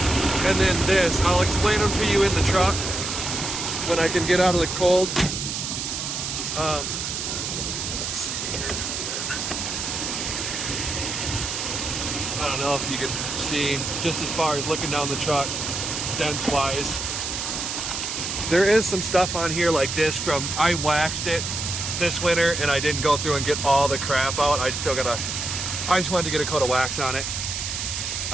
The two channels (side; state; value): right; noise; hiss, 3 dB below the sound